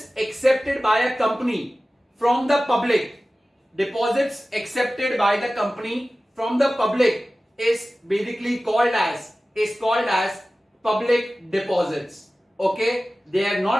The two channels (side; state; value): both; normal; correlation 0.96